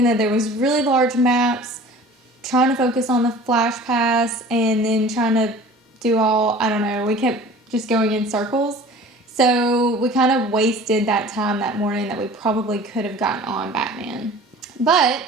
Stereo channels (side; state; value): both; normal; correlation 0.44